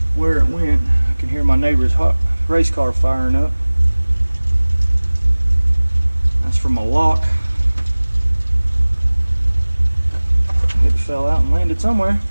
where it went. I can hear my neighbor's race car firing up. That's from a lock. It fell out and landed somewhere.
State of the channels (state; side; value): inverted; both; correlation -1.00